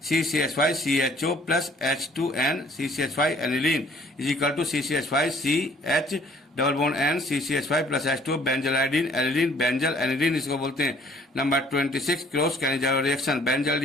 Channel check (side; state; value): both; normal; correlation 0.58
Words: CCH5CHO plus H2N CCH5 aniline is equal to CCH5CH double bond N CCH5 plus H2 benzylidene aniline benzal aniline इसको बोलते हैं. Number 26 cross Cannizzaro reaction.